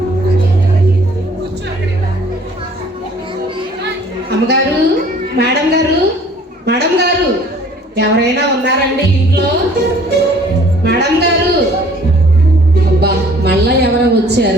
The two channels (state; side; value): normal; both; correlation 0.54